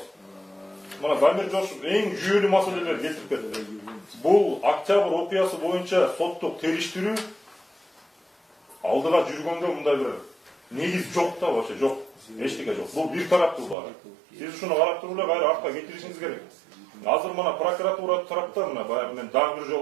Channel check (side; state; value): left; drops out; at 13.8 s